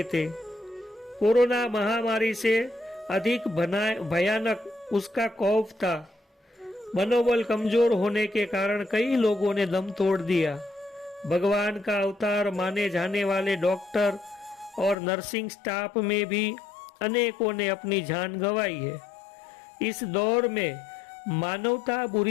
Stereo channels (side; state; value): right; drops out; at 15.0 s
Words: कोरोना महामारी से अधिक भयानक उसका खौफ था। मनोबल कमजोर होने के कारण कई लोगों ने दम तोड़ दिया। भगवान का अवतार माने जाने वाले डॉक्टर और नर्सिंग स्टाफ में भी अनेकों ने अपनी जान गंवाई है। इस दौर में मानवता